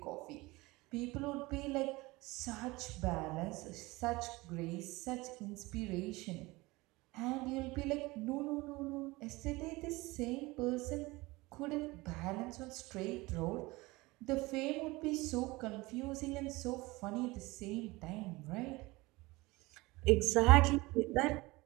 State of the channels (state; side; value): quieter; left; 21.9 dB